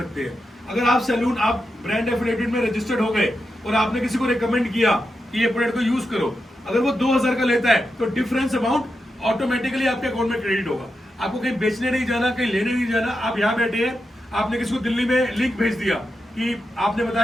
सकते हैं। अगर आप सैलून, आप ब्रांड एफिलिएटेड में रजिस्टर्ड हो गए और आपने किसी को रिकमेंड किया कि ये प्रोडक्ट को यूज करो, अगर वो 2000 का लेता है तो डिफरेंस अमाउंट ऑटोमेटिकली आपके अकाउंट में क्रेडिट होगा। आपको कहीं बेचने नहीं जाना, कहीं लेने नहीं जाना। आप यहाँ बैठे हैं, आपने किसी को दिल्ली में लिंक भेज दिया कि आपने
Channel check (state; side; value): normal; both; correlation 0.88